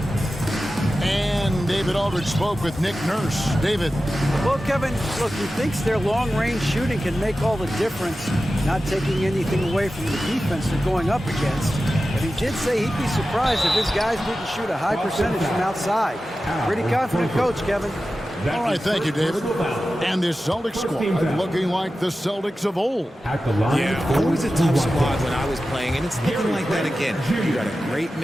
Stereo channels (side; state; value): both; normal; correlation 0.94